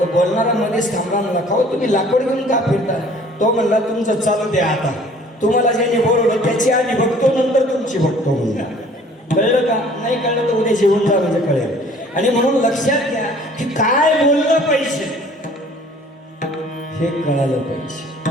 बोलणारा मध्येच थांबला, म्हणला का हो तुम्ही लाकूड घेऊन का फिरता. तो म्हणला तुमचं चालू द्या आता, तुम्हाला ज्याने बोलवलं त्याची आधी बघतो नंतर तुमची बघतो म्हणला. कळलं का. नाही कळलं तर उद्या जेवण जा म्हणजे कळेल. आणि म्हणून लक्षात घ्या की काय बोललं पाहिजे हे कळालं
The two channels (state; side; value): normal; both; correlation 0.53